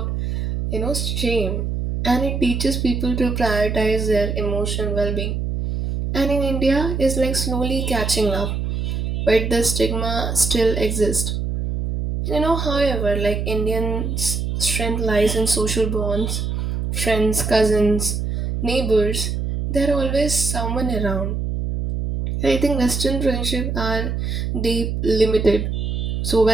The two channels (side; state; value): right; noise; hum, 2 dB below the sound